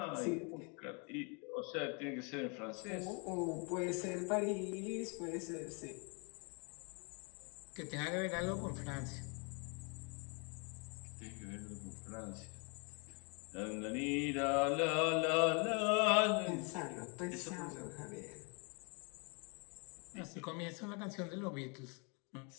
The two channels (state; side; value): quieter; right; 34.5 dB